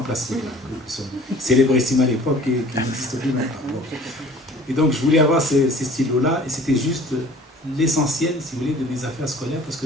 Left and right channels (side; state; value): both; normal; correlation 0.48